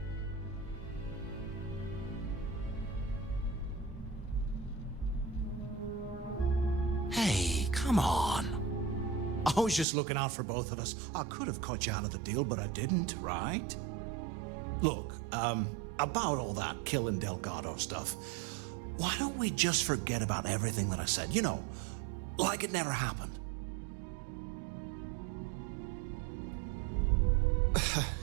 Hey, come on. I was just looking out for both of us. I could have cut you out of the deal, but I didn't, right? Look, about all that killing Delgado stuff, why don't we just forget about everything that I said? You know, like it never happened.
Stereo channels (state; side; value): drops out; left; at 9.9 s